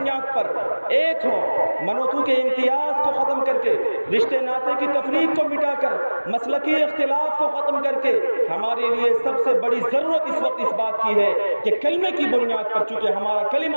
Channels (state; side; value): inverted; both; correlation -1.00